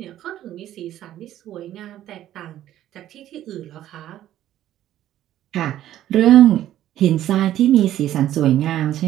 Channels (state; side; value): quieter; left; 12.6 dB